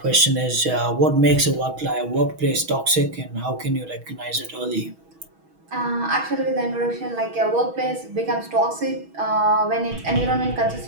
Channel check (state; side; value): late; left; 6.2 ms